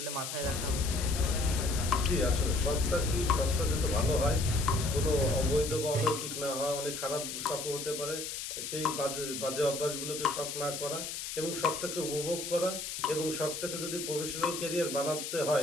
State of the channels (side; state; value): left; noise; hiss, 6 dB below the sound